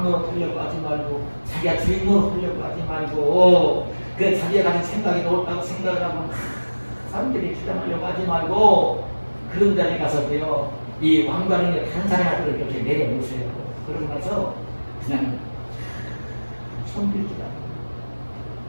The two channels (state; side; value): inverted; both; correlation -1.00